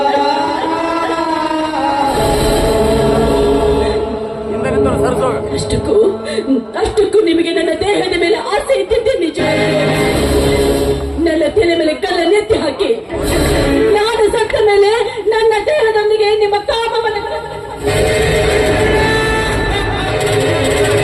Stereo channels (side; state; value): both; identical; correlation 1.00